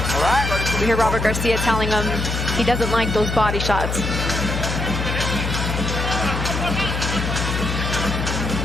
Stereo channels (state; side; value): noise; left; hum, 2 dB below the sound